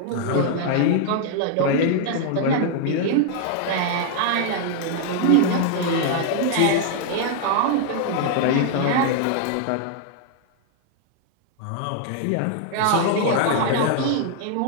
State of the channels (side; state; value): both; different; correlation 0.00